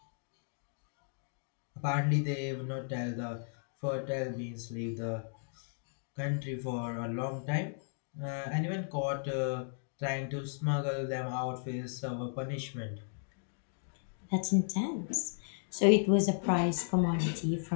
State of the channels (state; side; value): silent; right; digital silence